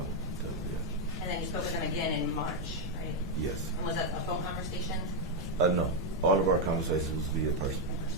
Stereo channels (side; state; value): both; normal; correlation 0.00